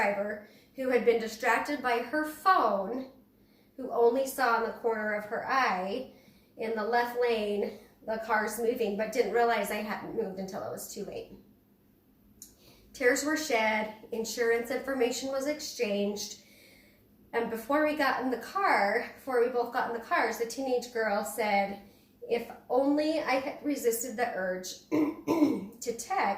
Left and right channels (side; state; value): both; identical; correlation 1.00